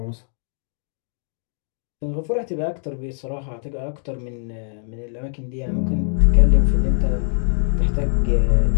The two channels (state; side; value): silent; right; digital silence